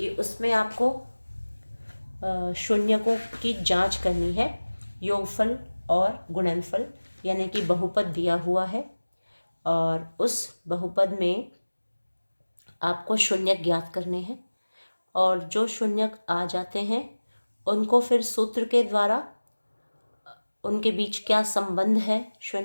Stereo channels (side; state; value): both; inverted; correlation -1.00